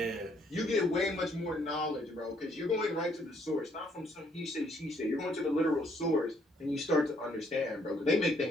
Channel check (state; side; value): normal; both; correlation 0.68